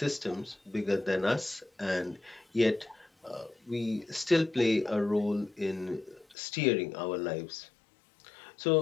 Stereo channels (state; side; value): drops out; right; at 6.4 s